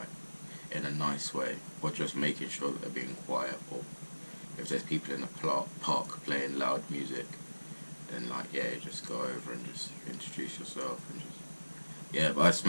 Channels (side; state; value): both; inverted; correlation -1.00